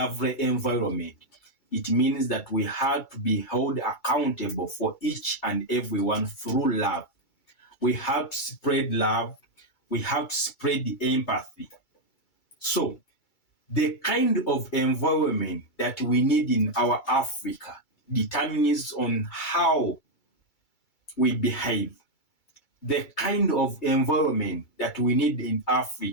environment, it means that we have to be held accountable for each and everyone through love. We have to spread love. We have to spread the empathy. So, the kind of environment that we need in our Africa determines on how we behave. The kind of environment that we need in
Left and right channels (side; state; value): right; late; 2.3 ms